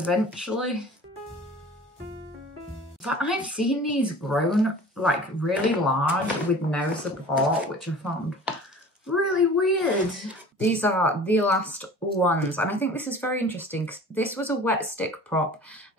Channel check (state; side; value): normal; both; correlation 0.43